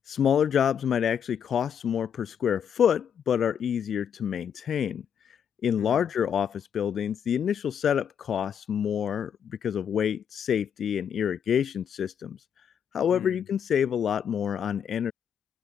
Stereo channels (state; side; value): quieter; right; 8.2 dB